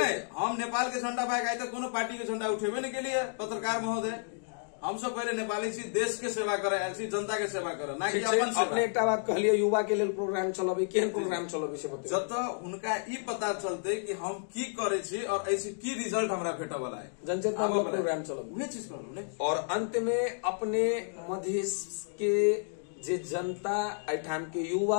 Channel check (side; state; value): right; silent; digital silence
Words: हम नेपाल के झंडा भाग आए तो कोनो पार्टी के झंडा उठेबे नहीं के लिए पत्रकार महोदय, हम सब पहले नेपाली छी, देश के सेवा करे आयल छी, जनता के सेवा करे, ना कि अपन सेवा। अपने एकटा बात कहलिए युवा के लेल प्रोग्राम चलाबे, केहन प्रोग्राम चलाबे से बताइए। जत उनका ई पता चलते कि हम की करे छी और ऐसे की रिजल्ट हमरा भेटे वाला है, जनचेतना प्रोग्राम चलाबे, उहे चीज करू ने। और अंत में अपने मधेश के जे जनता एठाम के